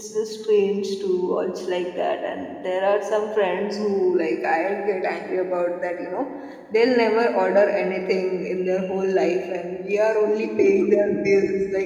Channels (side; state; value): both; identical; correlation 1.00